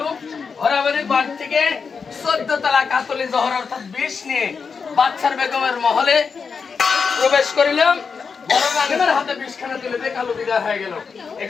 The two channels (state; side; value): quieter; right; 5.5 dB